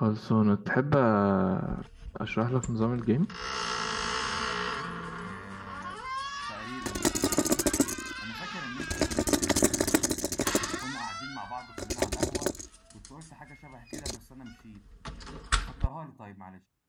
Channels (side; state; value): both; identical; correlation 1.00